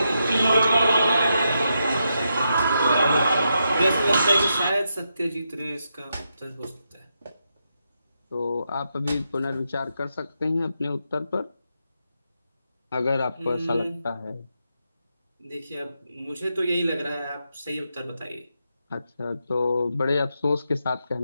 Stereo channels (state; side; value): inverted; both; correlation -0.84